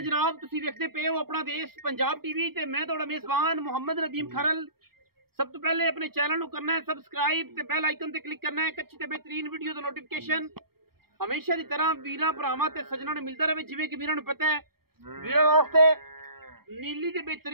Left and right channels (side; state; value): left; late; 0.94 ms